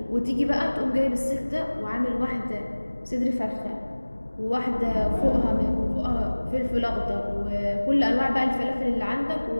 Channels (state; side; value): inverted; both; correlation -1.00